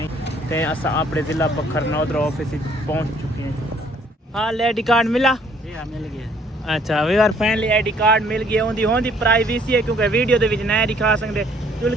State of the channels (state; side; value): normal; both; correlation 0.61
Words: ते असा अपने जिला बखर नादरा ऑफिस पहुंच चुके हैं। हाँ आईडी कार्ड मिला? जी हाँ मिल गया। अच्छा we are finally ID card मिल गया। होंदी होंदी प्राइवेसी है क्योंकि वीडियो दे विच नहीं दिखा सकते। चुल